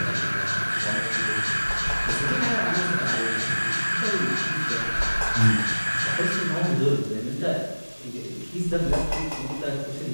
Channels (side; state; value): both; inverted; correlation -1.00